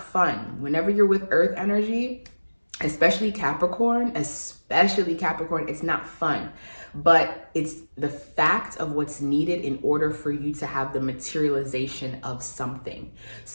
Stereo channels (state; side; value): inverted; both; correlation -1.00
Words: fun. Whenever you're with Earth energy, especially Capricorn, it's not fun. But it's the fact of what's needed in order for you to have the materialization of something.